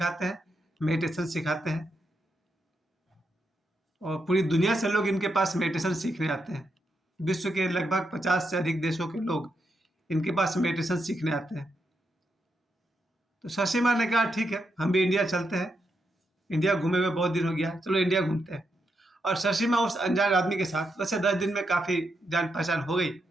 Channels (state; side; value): normal; both; correlation 0.82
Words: हैं, मेडिटेशन सिखाते हैं, और पूरी दुनिया से लोग इनके पास मेडिटेशन सीखने आते हैं। विश्व के लगभग 50 से अधिक देशों के लोग इनके पास मेडिटेशन सीखने आते हैं। तो शशि माँ ने कहा ठीक है, हम भी इंडिया चलते हैं, इंडिया घूमे हुए बहुत दिन हो गया, चलो इंडिया घूमते हैं। और शशि माँ उस अनजान आदमी के साथ, वैसे 10 दिन में काफ़ी जान पहचान हो गई,